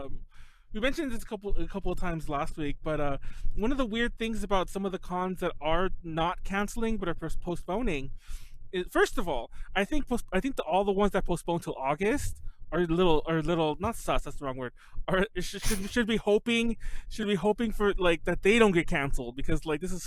mentioned this a couple of times last week, but one of the weird things about some of the cons that are not canceling but are postponing is, first of all, I think all the ones that postpone till August are a little not sus. That's the wrong word. Should be hoping for like that they don't get canceled, because like this is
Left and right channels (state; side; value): identical; both; correlation 1.00